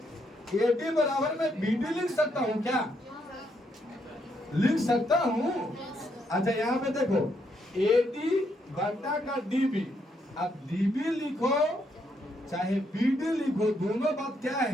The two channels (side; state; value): both; normal; correlation 0.76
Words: बराबर में BD लिख सकता हूँ क्या? लिख सकता हूँ। अच्छा, यहाँ पे देखो AD बटा का DB, अब DB लिखो चाहे BD लिखो, दोनों बात क्या